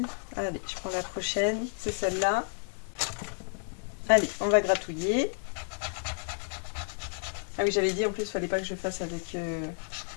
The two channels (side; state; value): right; silent; digital silence